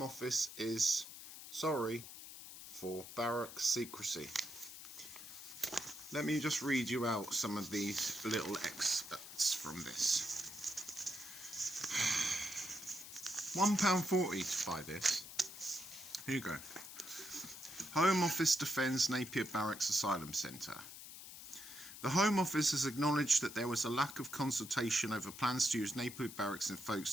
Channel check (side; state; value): left; noise; hiss, 13 dB below the sound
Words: Office is sorry for barracks secrecy. Let me just read you out some of these little excerpts from this. £1.40 to buy this. Here you go. Home Office defends Napier Barracks Asylum Centre. The Home Office has acknowledged that there was a lack of consultation over plans to use Napier Barracks in